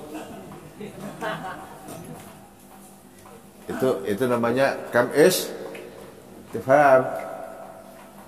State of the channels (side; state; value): both; identical; correlation 1.00